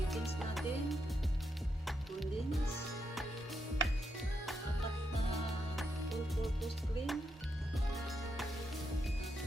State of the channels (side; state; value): both; normal; correlation 0.82